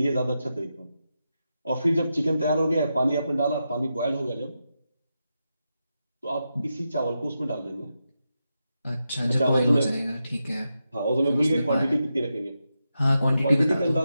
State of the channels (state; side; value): inverted; both; correlation -0.88